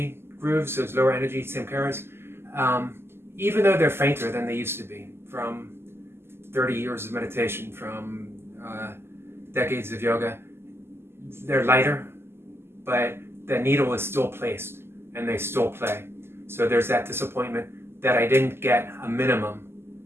grooves, those lower energy samskaras, even though they're fainter than they used to be from 30 years of meditation, from decades of yoga, they're lighter, but the needle is still placed and they still play. So there's that disappointment that I didn't get a minimum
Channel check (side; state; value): left; late; 0.12 ms